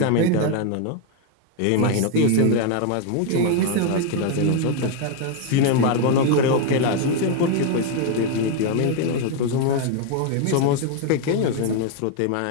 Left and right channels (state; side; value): different; both; correlation 0.01